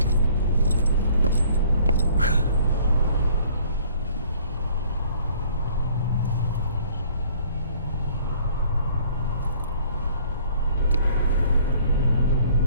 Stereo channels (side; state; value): both; inverted; correlation -0.56